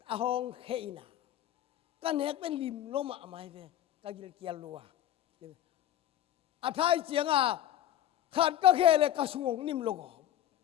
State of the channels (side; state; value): right; quieter; 11.9 dB